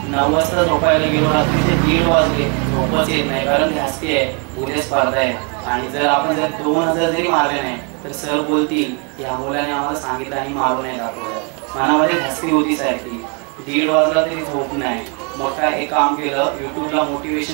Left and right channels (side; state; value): left; quieter; 34.9 dB